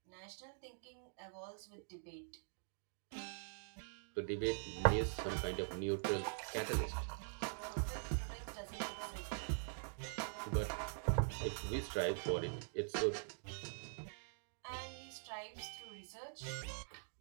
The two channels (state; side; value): silent; left; digital silence